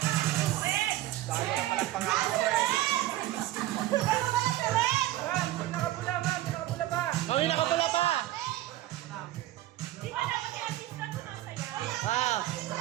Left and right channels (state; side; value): quieter; left; 15.0 dB